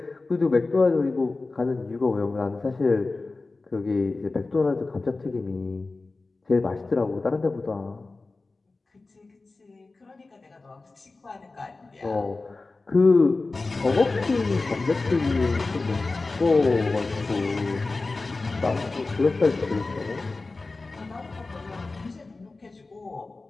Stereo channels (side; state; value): right; quieter; 3.5 dB